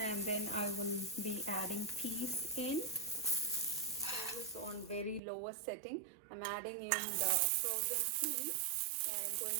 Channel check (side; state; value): left; drops out; at 5.2 s